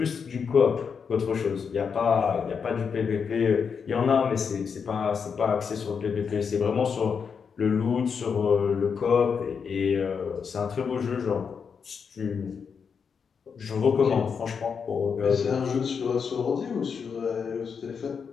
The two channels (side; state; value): right; quieter; 6.2 dB